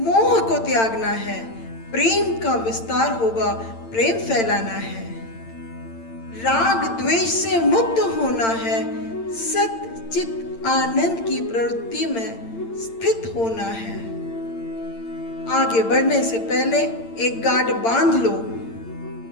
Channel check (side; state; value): right; late; 8.8 ms